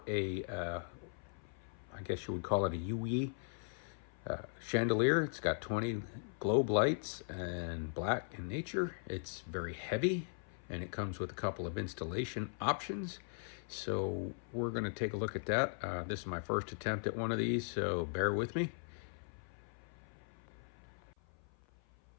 I guess you would call it a YUYI chandelier. It's got 20 globe lights and black in nature. It's very heavy and it comes with a couple of installation options. So we're going to take a look at that. This is my first attempt at one of these, so bear with me.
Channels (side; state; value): right; silent; 52 dB below the other